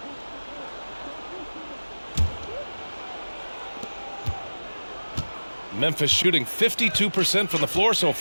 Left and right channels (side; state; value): both; inverted; correlation -1.00